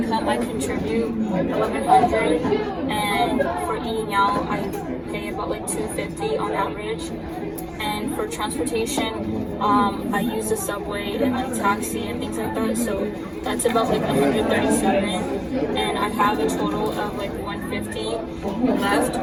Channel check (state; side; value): identical; both; correlation 1.00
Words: I contribute $1,100, and for eating out, I pay about like $250 on average. And for transportation, I use the subway and like taxi and things like that. So that's about like $137, and I have a total of like $150 left.